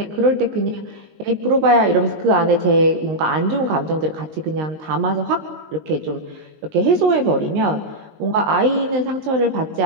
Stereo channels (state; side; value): late; left; 19 ms